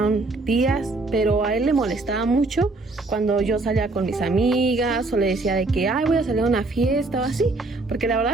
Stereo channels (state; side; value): quieter; left; 3.3 dB